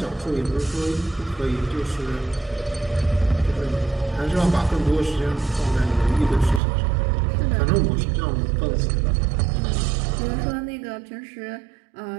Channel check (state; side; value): drops out; left; at 6.6 s